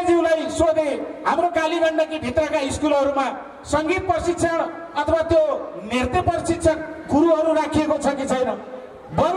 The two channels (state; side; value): identical; both; correlation 1.00